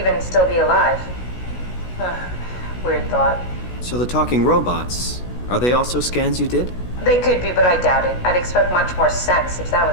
still be alive. Weird thought. So the talking robots, are they also scans you did? They could be, but I doubt it. I'd expect much more sense if that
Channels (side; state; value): right; late; 16 ms